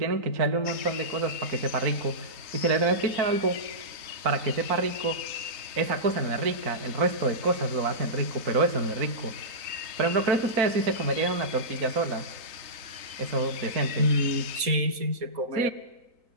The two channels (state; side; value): late; left; 3.9 ms